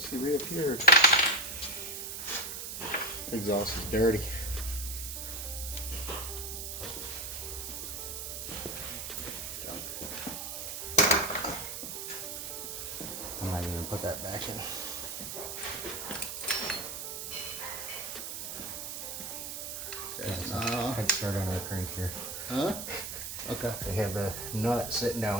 reappeared. Exhaust is dirty. I might even put that back in. Head start on our crank here. Huh? Okay. They have a nut sitting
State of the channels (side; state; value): right; noise; hiss, 6 dB below the sound